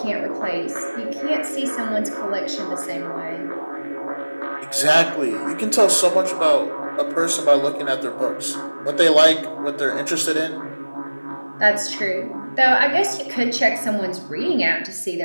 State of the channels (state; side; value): inverted; both; correlation -1.00